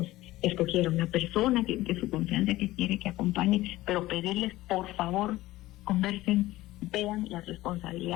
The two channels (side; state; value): right; quieter; 17.2 dB